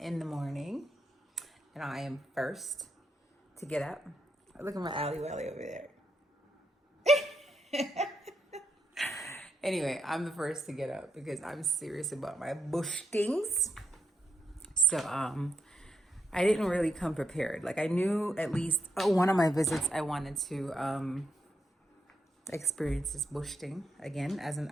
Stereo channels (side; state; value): both; normal; correlation 0.82